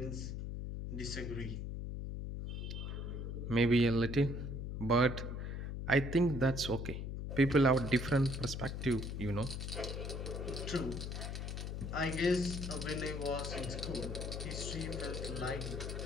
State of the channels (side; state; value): left; noise; hum, 4 dB below the sound